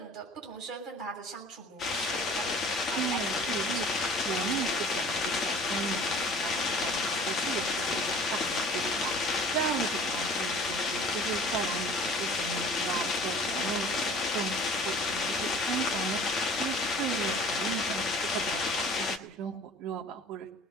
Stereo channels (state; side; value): normal; both; correlation 0.47